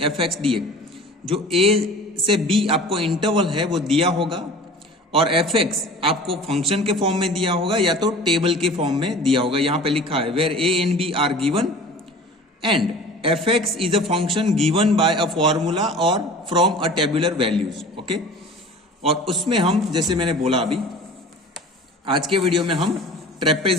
f x d x. जो a से b आपको इंटरवल है वो दिया होगा और एफ एक्स आपको फंक्शन के फॉर्म में दिया होगा या तो टेबल के फॉर्म में दिया होगा। यहां पे लिखा है where a and b are given and f x is a function given by a formula और from a tabular values. Okay, और उसमें हम जैसे मैंने बोला अभी आज के वीडियो में हम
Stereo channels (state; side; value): normal; both; correlation 0.41